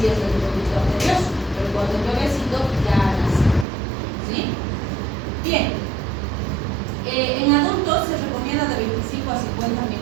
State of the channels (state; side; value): drops out; left; at 3.7 s